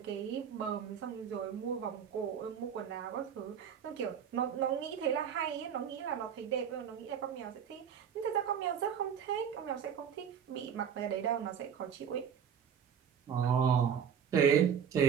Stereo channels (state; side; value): quieter; left; 7.9 dB